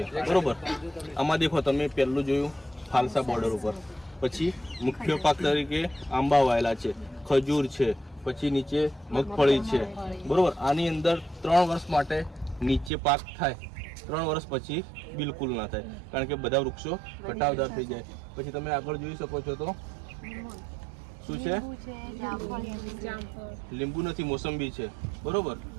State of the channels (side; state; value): left; drops out; at 12.9 s